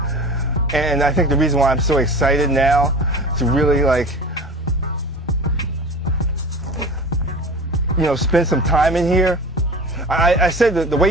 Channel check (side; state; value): both; normal; correlation 0.35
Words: and I think the reason why I'm so excited now to really, like, you know, spend some time in here. I said that the way